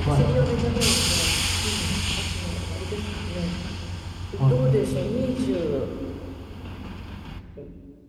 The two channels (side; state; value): both; identical; correlation 1.00